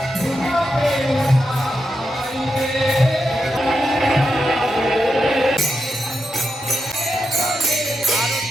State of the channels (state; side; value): normal; both; correlation 0.87